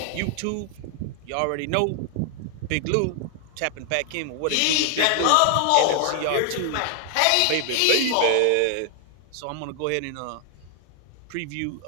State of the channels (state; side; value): different; both; correlation 0.00